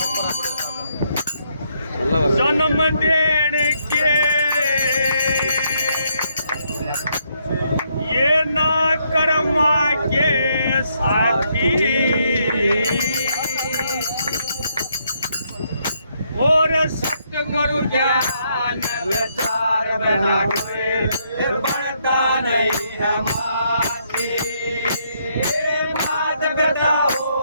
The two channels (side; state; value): both; inverted; correlation -0.74